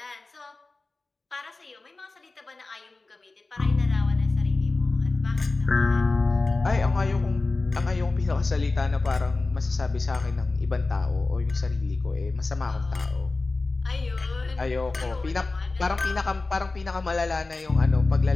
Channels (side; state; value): right; quieter; 3.5 dB